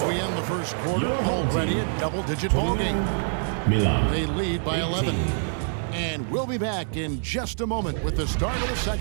we end the first quarter, already a double-digit ball game. Milano. They lead by 11. And we'll be back in just a moment with the start of the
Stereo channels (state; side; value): silent; left; digital silence